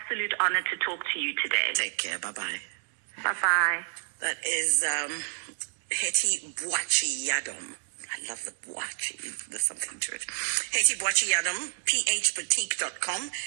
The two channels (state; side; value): silent; left; digital silence